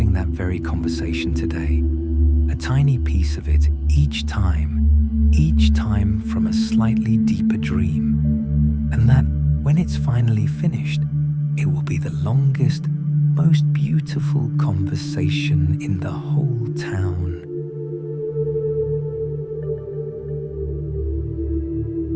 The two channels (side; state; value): both; identical; correlation 1.00